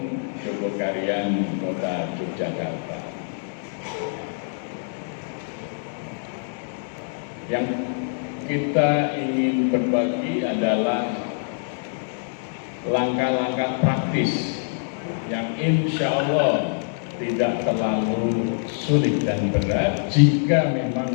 Jogokarian, Kota Yogyakarta. Yang kita ingin berbagi adalah langkah-langkah praktis yang insya Allah tidak terlalu sulit dan berat jika memang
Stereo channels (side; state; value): right; silent; digital silence